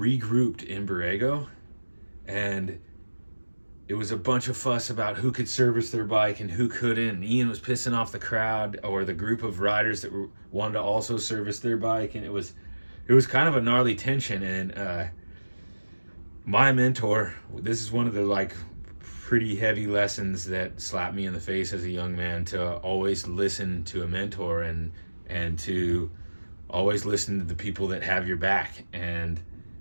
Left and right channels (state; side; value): inverted; both; correlation -1.00